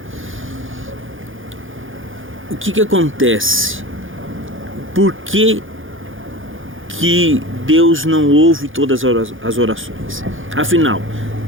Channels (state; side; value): late; left; 0.58 ms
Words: O que acontece? Por que Deus não ouve todas as orações? Afinal,